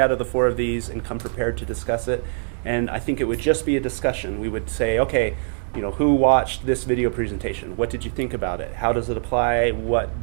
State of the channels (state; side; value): silent; left; digital silence